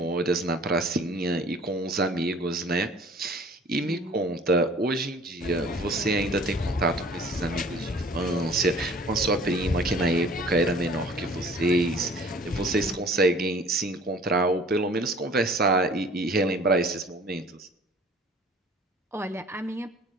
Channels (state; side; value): normal; both; correlation 0.49